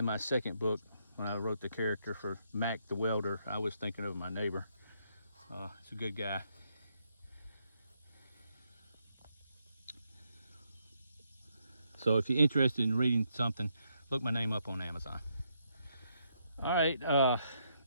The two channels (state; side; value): inverted; both; correlation -0.77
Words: my second book when I wrote the character for Mac the welder. I was thinking of my neighbor. He's a good guy. So if you're interested in reading something, look my name up on Amazon. All right,